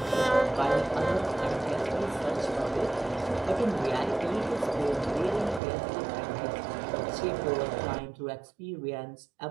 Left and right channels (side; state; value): left; drops out; at 5.6 s